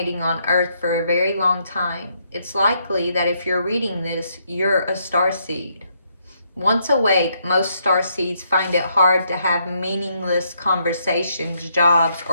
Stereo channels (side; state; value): both; inverted; correlation -0.74